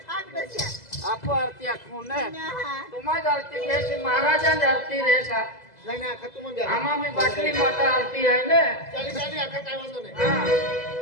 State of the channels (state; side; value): late; right; 2.0 ms